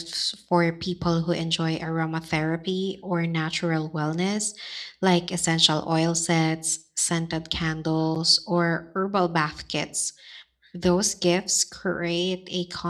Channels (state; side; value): identical; both; correlation 1.00